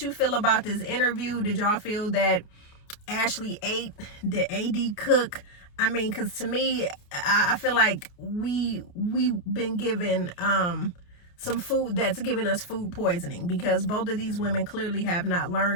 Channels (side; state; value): right; late; 29 ms